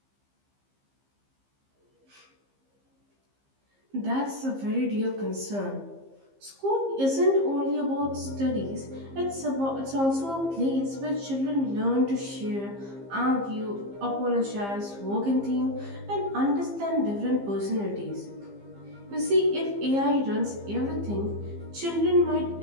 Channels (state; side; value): late; left; 15 ms